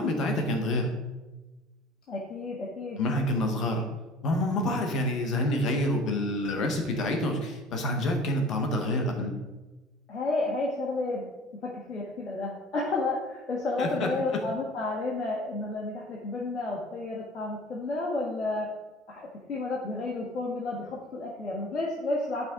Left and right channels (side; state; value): both; normal; correlation 0.45